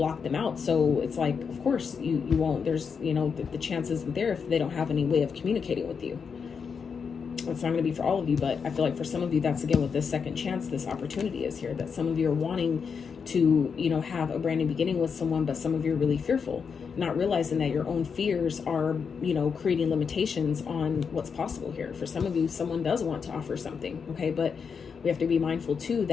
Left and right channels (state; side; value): quieter; right; 6.1 dB